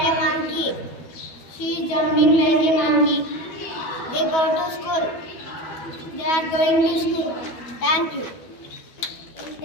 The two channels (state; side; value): late; right; 12 ms